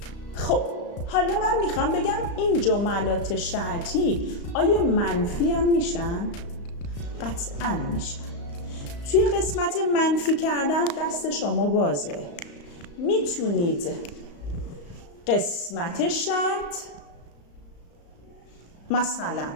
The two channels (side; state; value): right; late; 35 ms